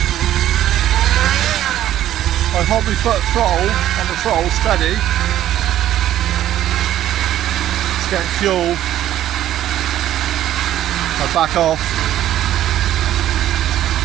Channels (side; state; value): left; quieter; 12.3 dB